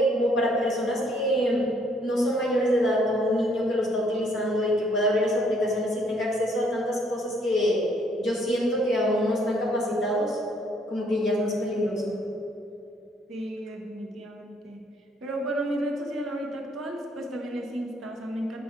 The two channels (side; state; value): both; normal; correlation 0.66